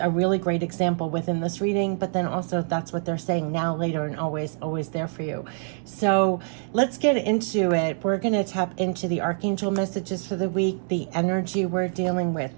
really great example within this reading, but then also that's what they're saying now, later, and always, always there for you. So let's get into it. We're going to tap into the archangel messages for the week, the energy we're dealing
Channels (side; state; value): left; silent; 62 dB below the other